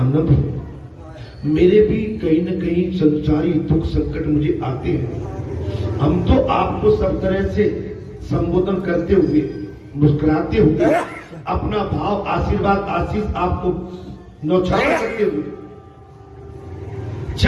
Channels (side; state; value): both; identical; correlation 1.00